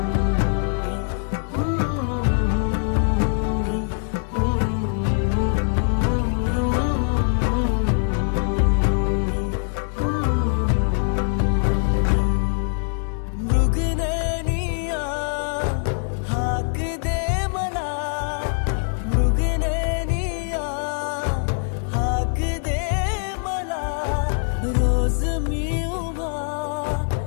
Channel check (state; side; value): silent; right; 58 dB below the other